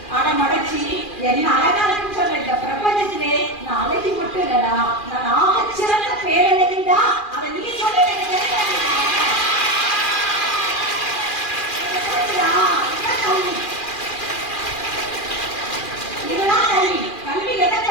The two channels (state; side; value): late; right; 2.4 ms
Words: அடமடைச்சி என்ன அழகா இருக்குன்னு சொல்ல. இந்த பிரபஞ்சத்திலே நான் அழகி மட்டும் இல்லடா, நான் ஆகச்சிறந்த பேரழகிடா. அதை நீ சொல்லி இதுதான் கல்வி. கல்வி எதை